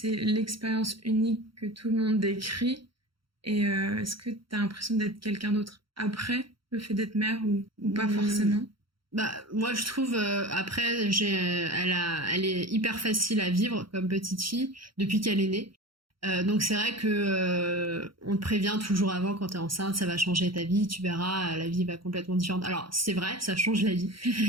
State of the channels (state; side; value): late; left; 0.74 ms